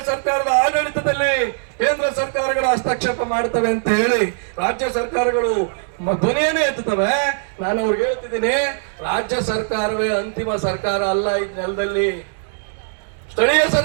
ಸರ್ಕಾರದ ಆಡಳಿತದಲ್ಲಿ ಕೇಂದ್ರ ಸರ್ಕಾರಗಳು ಹಸ್ತಕ್ಷೇಪ ಮಾಡ್ತವೆ ಅಂತ ಹೇಳಿ ರಾಜ್ಯ ಸರ್ಕಾರಗಳು ಧ್ವನಿಯನ್ನೇ ಎತ್ತುತ್ತವೆ. ನಾನು ಅವ್ರಿಗೆ ಹೇಳ್ತಿದ್ದೀನಿ, ರಾಜ್ಯ ಸರ್ಕಾರವೇ ಅಂತಿಮ ಸರ್ಕಾರ ಅಲ್ಲ. ಈ ನೆಲದಲ್ಲಿ ಸ್ಥಳೀಯ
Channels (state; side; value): silent; left; digital silence